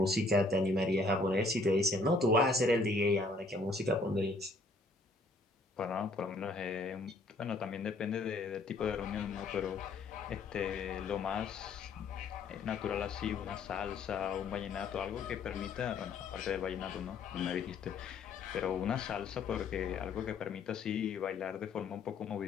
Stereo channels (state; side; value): quieter; right; 3.3 dB